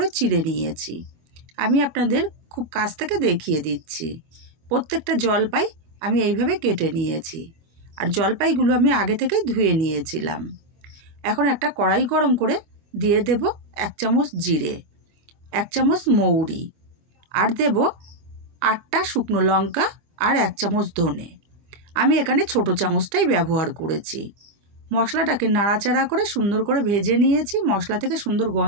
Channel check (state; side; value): late; left; 25 ms